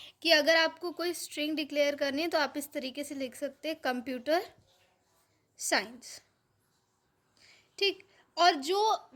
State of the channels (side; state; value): both; identical; correlation 1.00